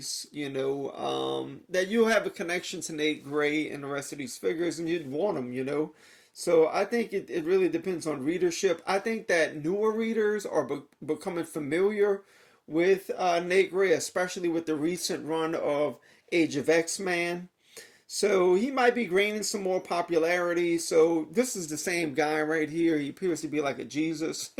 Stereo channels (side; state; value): both; identical; correlation 1.00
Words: you know, that you'll have a connection to Nate Gray and the rest of these figures, and you'd want them, you know. So I think it really depends on readership. I think that newer readers are becoming familiar with Nate Gray, especially with the recent run of Age of X-Men. So he might be gaining some more popularity. So this is the same guy right here. He appears to be like a Jesus